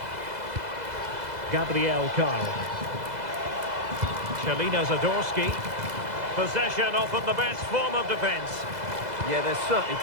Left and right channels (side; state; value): left; late; 2.0 ms